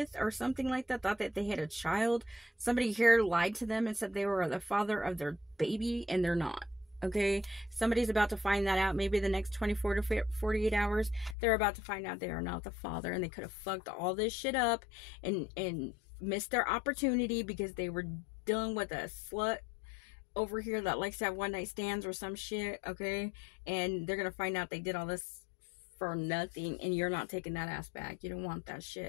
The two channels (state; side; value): drops out; right; at 11.4 s